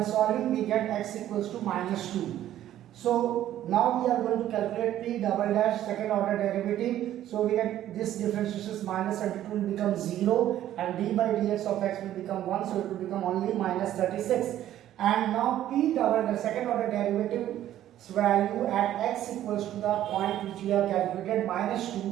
solving we get x equals to minus 2. So now we are going to calculate p double dash second order derivative. So we get this differentiation is minus 72 will become 0 and d by dx of x will become 1, so it will become only minus 36. And now p double dash second order derivative's value at x equals to the point which we have calculated minus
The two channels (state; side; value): quieter; left; 12.4 dB